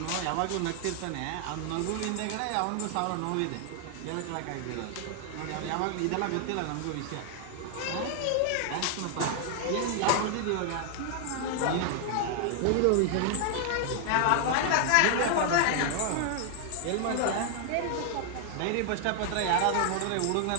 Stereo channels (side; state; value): both; different; correlation 0.00